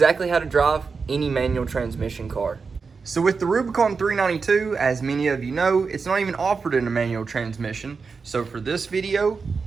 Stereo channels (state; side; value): quieter; left; 5.0 dB